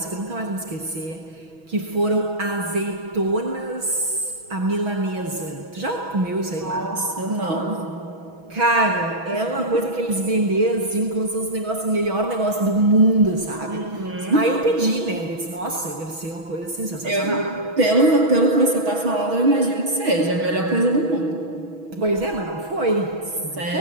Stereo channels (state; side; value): late; left; 6.2 ms